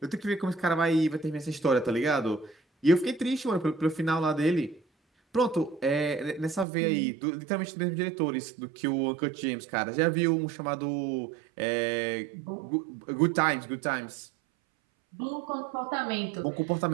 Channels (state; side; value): drops out; left; at 6.7 s